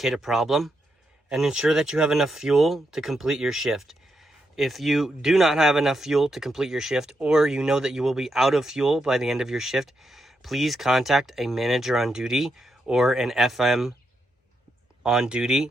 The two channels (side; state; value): both; normal; correlation 0.82